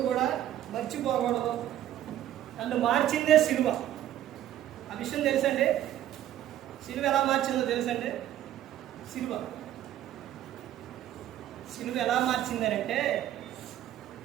కూడా మర్చిపోకూడదు. నన్ను మార్చిందే సిలువ. ఆ విషయం తెలుసండి. సిలువ ఎలా మార్చిందో తెలుసండి. సిలువ ఎలా మార్చిందనంటే,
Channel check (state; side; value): quieter; left; 12.2 dB